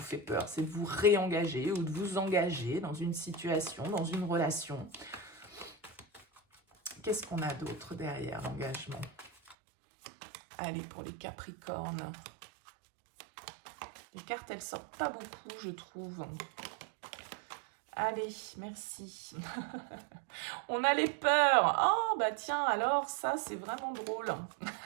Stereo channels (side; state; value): left; drops out; at 9.6 s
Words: fait peur, c'est de vous réengager ou de vous engager dans une situation, dans une relation. Qu'est-ce qu'on a d'autre derrière l'engagement? Allez, pour les Capricornes. Les cartes, elles sortent pas beaucoup, je trouve. Allez, merci. On a les peurs. Oh, bah tiens, alors ça, c'est vraiment drôle.